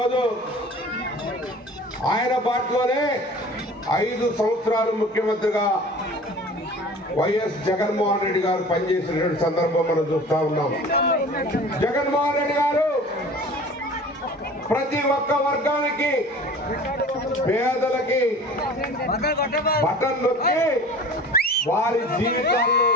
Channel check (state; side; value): normal; both; correlation 0.42